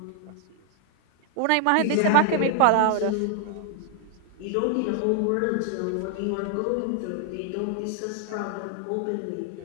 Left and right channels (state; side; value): different; both; correlation 0.00